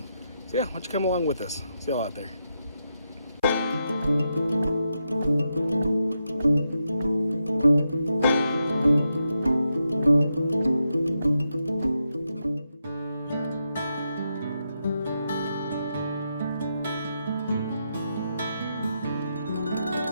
yeah, why don't you come along with us? See y'all out there.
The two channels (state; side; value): inverted; both; correlation -0.84